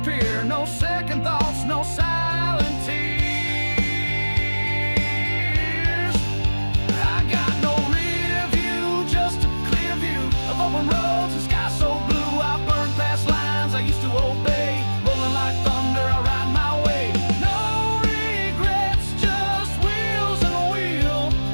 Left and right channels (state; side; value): inverted; both; correlation -1.00